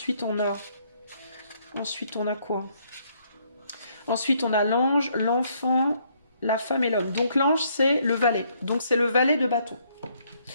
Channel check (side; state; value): both; inverted; correlation -0.69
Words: on a quoi? Ensuite, on a l'ange, l'enfant, la femme et l'homme. Donc, l'ange, c'est le valet. Donc, c'est le valet de bâton.